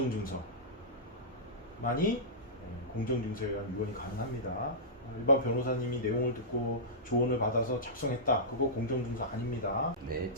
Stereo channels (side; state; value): both; normal; correlation -0.16